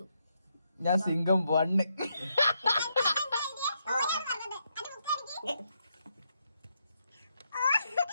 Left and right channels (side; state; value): both; inverted; correlation -0.80